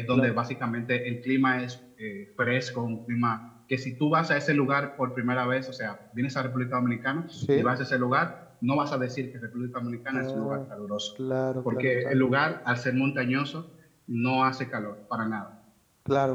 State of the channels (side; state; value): both; identical; correlation 1.00